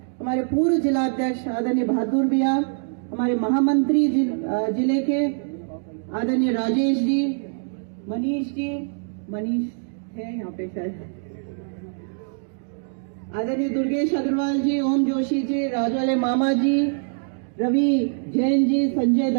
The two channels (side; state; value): left; silent; digital silence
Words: हमारे पूर्व जिला अध्यक्ष आदरणीय बहादुर भैया, हमारे महामंत्री जिले के आदरणीय राजेश जी, मनीष है यहाँ पे शायद, आदरणीय दुर्गेश अग्रवाल जी, ओम जोशी जी, राजवाले मामा जी, रवि जैन जी, संजय